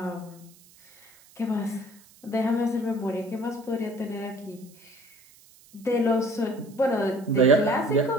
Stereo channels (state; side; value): noise; right; hiss, 26 dB below the sound